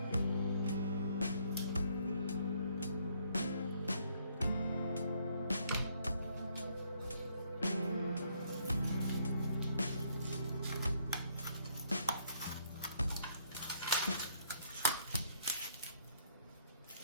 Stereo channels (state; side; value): inverted; both; correlation -0.68